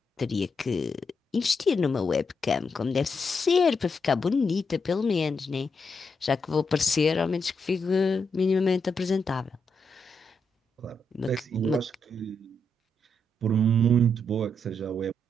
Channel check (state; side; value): normal; both; correlation 0.81